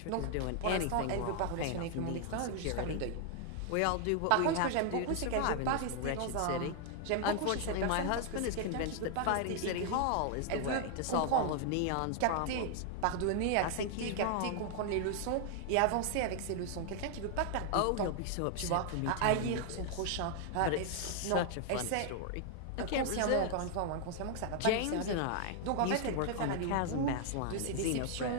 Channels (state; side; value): different; both; correlation 0.00